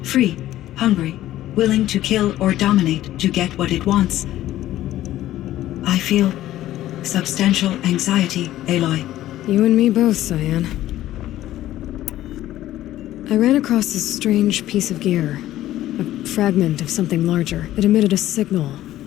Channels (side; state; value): right; quieter; 14.0 dB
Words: free, hungry, willing to kill or dominate to get what it wants, I feel substantial anxiety, Aloy. You and me both, Cyan. I ran across this strange piece of gear. A fragment of something larger. It emitted a signal.